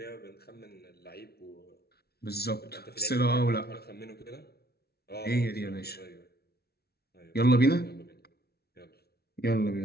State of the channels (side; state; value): right; late; 0.46 ms